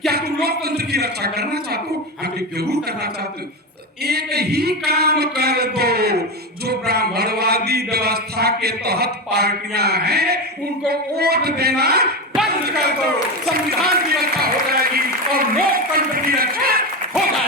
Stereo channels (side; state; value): both; normal; correlation 0.17